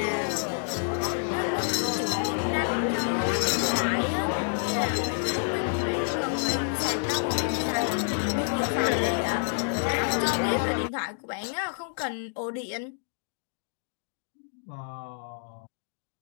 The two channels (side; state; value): right; silent; digital silence